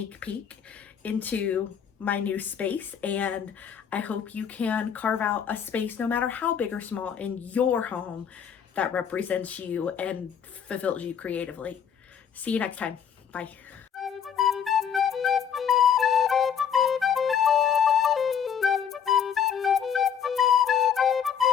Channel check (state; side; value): quieter; right; 8.0 dB